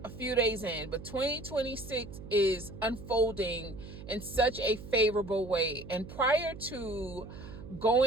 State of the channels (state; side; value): noise; right; hum, 13 dB below the sound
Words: a few days in, but 2026 is unfolding in such a favorable way. And prior to